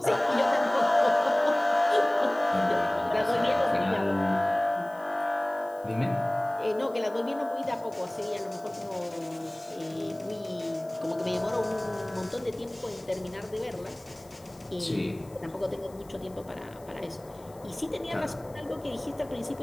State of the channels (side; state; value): left; noise; hiss, 26 dB below the sound